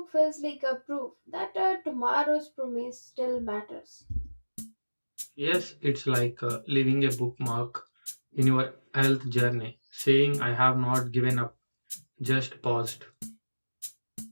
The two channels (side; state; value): both; inverted; correlation -1.00